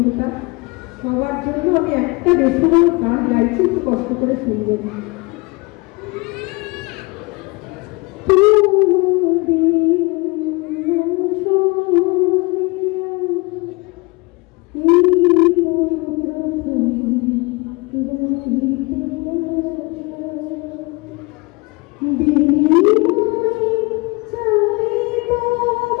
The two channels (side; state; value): right; quieter; 25.8 dB